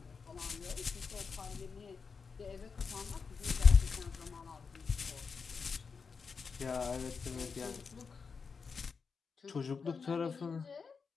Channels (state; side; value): quieter; right; 5.3 dB